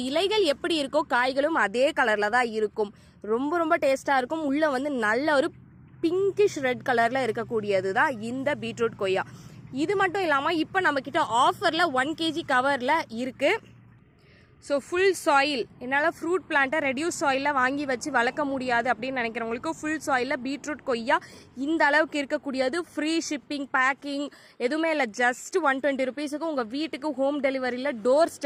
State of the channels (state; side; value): identical; both; correlation 1.00